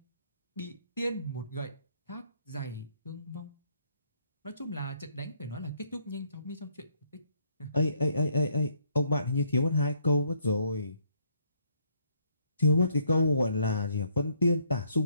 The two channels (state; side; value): inverted; both; correlation -0.69